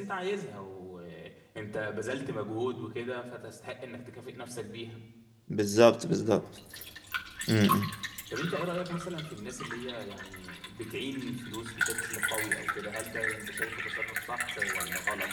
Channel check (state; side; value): identical; both; correlation 1.00